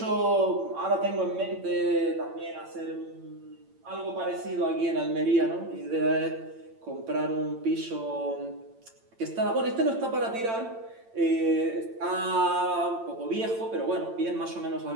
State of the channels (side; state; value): left; late; 8.8 ms